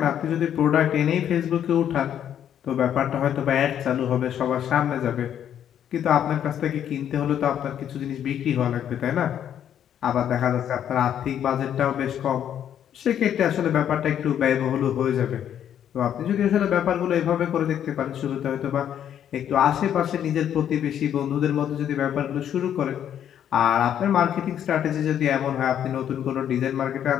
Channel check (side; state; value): right; quieter; 9.7 dB